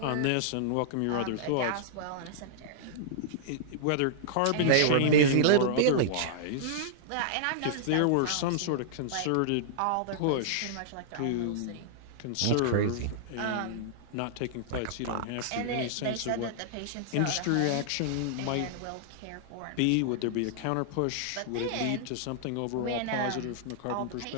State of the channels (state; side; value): different; both; correlation -0.02